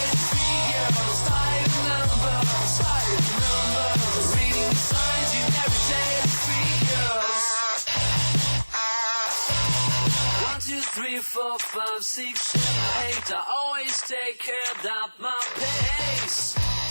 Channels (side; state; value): both; inverted; correlation -1.00